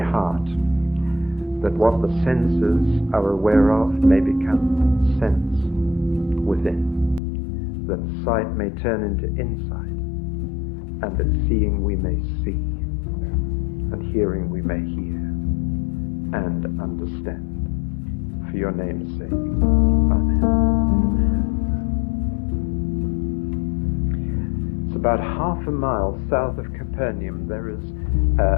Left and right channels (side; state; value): right; drops out; at 7.2 s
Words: heart, that what the senses are aware of may become sense within, that sight may turn into insight, and that seeing we may see, and hearing we may hear, and understand. For your name's sake. Amen. It's about half a mile south of Capernaum. There is